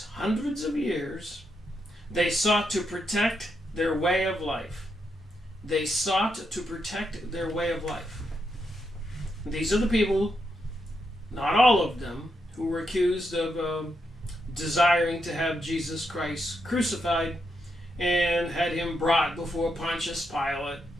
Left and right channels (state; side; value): normal; both; correlation 0.82